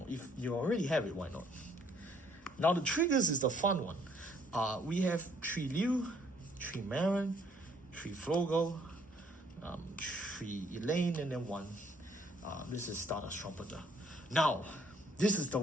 you already have it, why not? Now the triggers is the fun one. We have 3 Liu, 3 Marin, 3 Flogel, 3 Elaine, and then 1. This is Stardust Trumpeter. Now, this is the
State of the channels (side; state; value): both; normal; correlation 0.64